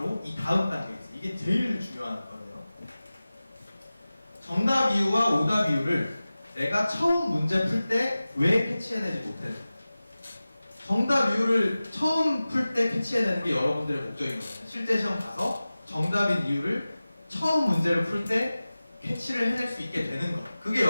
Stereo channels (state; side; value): inverted; both; correlation -0.97